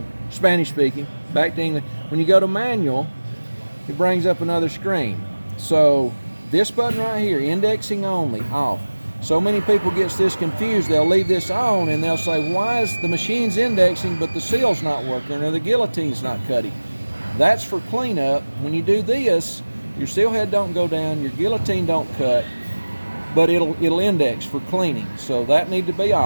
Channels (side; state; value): both; inverted; correlation -1.00